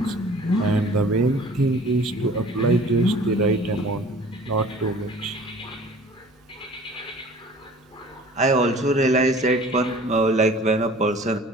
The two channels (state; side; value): normal; both; correlation 0.48